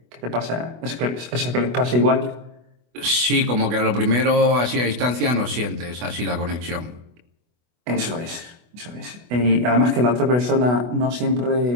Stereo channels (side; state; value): left; late; 24 ms